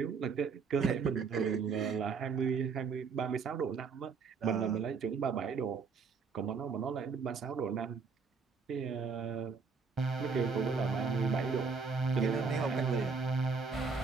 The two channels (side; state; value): left; quieter; 5.2 dB